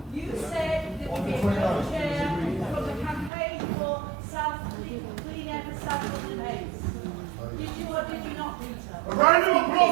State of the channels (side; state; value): left; drops out; at 3.3 s